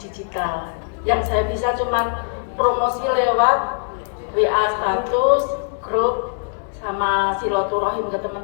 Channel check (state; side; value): silent; right; digital silence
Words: Yang saya bisa cuma promosi lewat WA status, grup, sama silaturahim ke